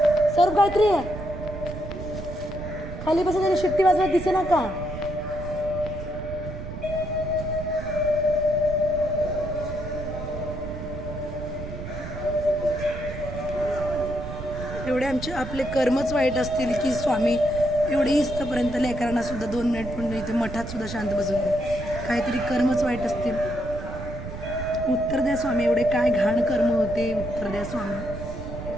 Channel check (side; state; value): right; noise; rumble, 9 dB below the sound